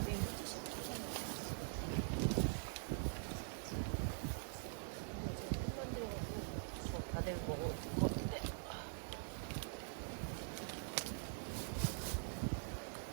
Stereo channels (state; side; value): silent; left; digital silence